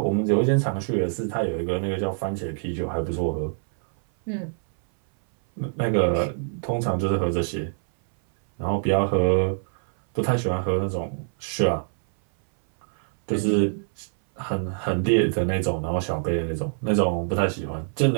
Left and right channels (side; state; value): left; silent; 60 dB below the other